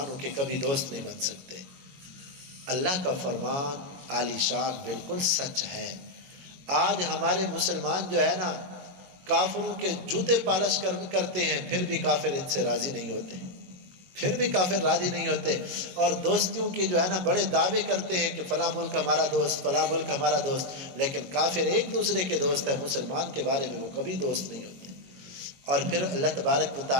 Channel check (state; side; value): late; left; 22 ms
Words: کے کبھی دوست نہیں بن سکتے۔ اللہ کا فرمان عالی شان بالکل سچ ہے۔ آج ہمارے مسلمان جو ہے نا کافروں کے جوتے پالش کرتے ہیں، پھر بھی کافر ان سے راضی نہیں ہوتے، پھر بھی کافر راضی نہیں ہوتے، اور دوستیوں کی جو ہے نا بڑے دعوے کرتے ہیں کہ فلاں ملک ہمارا دوست، فلاں ملک ہمارا دوست، لیکن کافر ایک دوسرے کے دوست ہے، مسلمان کے بارے میں وہ کبھی دوست نہیں ہوتے۔ اور پھر اللہ تبارک و